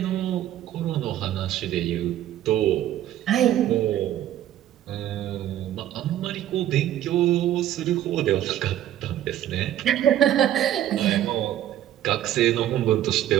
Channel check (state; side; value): quieter; left; 12.2 dB